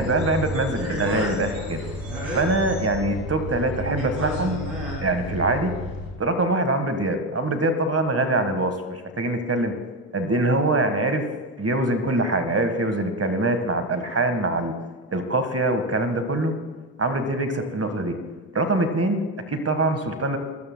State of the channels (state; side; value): normal; both; correlation 0.15